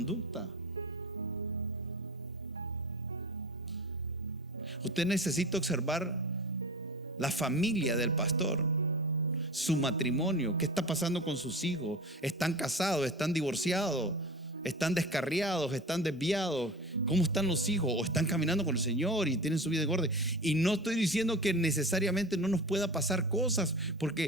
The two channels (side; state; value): both; normal; correlation 0.33